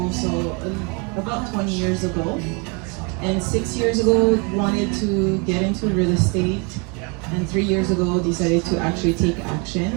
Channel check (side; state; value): left; quieter; 32.6 dB